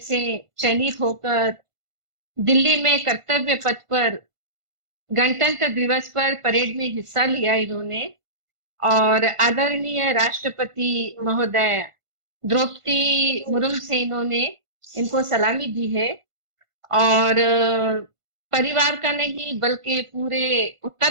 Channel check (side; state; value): left; late; 1.5 ms